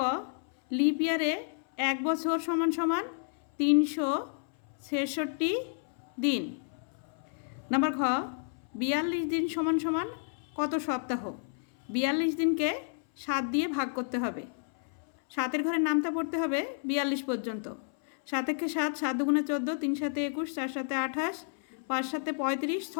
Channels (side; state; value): right; silent; 57 dB below the other